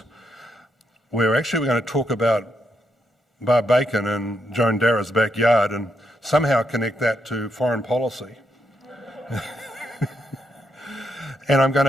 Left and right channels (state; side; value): normal; both; correlation 0.80